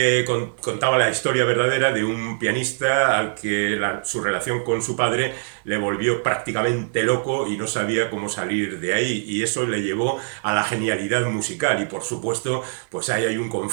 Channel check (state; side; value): silent; left; 57 dB below the other